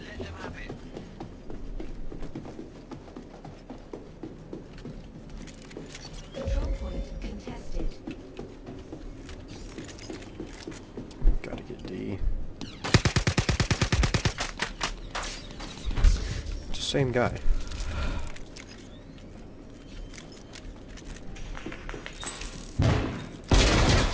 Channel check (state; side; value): identical; both; correlation 1.00